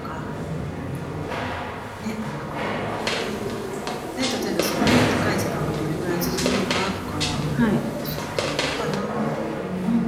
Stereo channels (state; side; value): identical; both; correlation 1.00